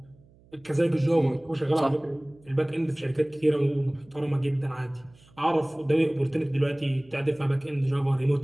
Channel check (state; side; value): noise; right; hum, 28 dB below the sound